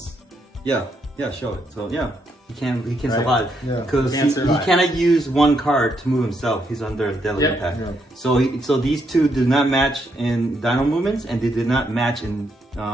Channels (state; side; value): normal; both; correlation 0.77